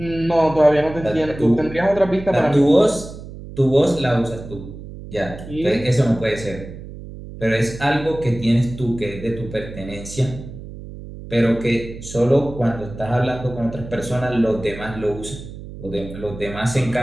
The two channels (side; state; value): right; noise; hum, 13 dB below the sound